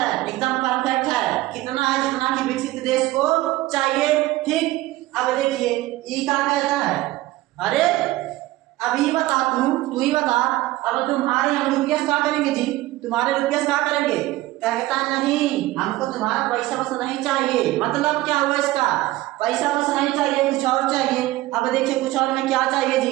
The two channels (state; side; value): quieter; left; 17.5 dB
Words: एकदम परफेक्ट है, कितना है, जितना कि विकसित देश को चाहिए। ठीक, अब देखिए ई क्या कहता है, अरे अभी बता तू ही बता, अब तुम्हारे हम रुपया क्या करेंगे जी, तुम्हारे रुपया क्या करेंगे। कहता नहीं, हमको तुम्हारा पैसा बस नहीं चाहिए। मतलब क्या हुआ इसका, पैसा बस नहीं चाहिए, कुछ और चाहिए। अब देखिए कुछ और में क्या चाहिए